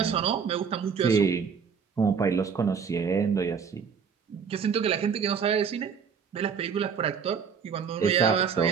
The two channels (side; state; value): left; quieter; 6.5 dB